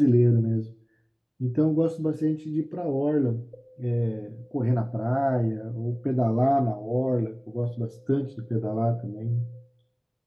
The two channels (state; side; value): identical; both; correlation 1.00